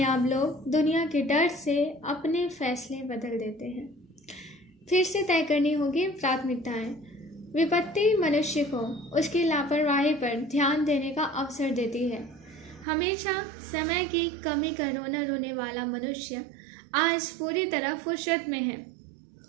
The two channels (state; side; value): drops out; left; at 12.9 s